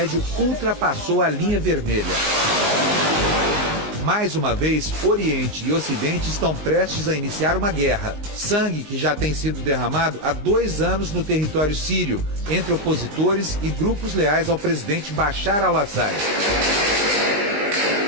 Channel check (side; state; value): left; late; 19 ms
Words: ultrapassou a linha vermelha. Mais uma vez, Oriente e Ocidente estão prestes a iniciar uma guerra. Sangue que já tem sido derramado há 2 anos no território sírio, entre opositores e grupos leais ao presidente Bashar al-Assad.